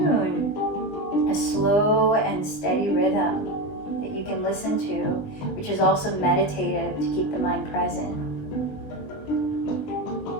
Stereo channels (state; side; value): late; right; 19 ms